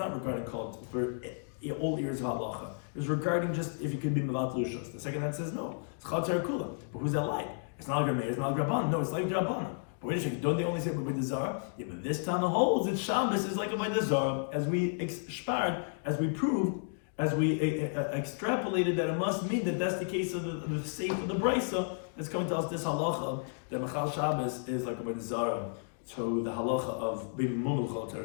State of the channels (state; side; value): silent; right; digital silence